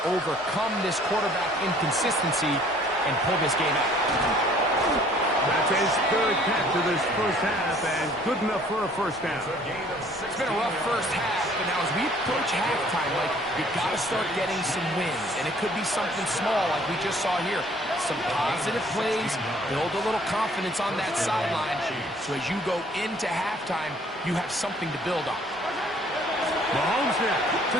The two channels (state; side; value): normal; both; correlation 0.57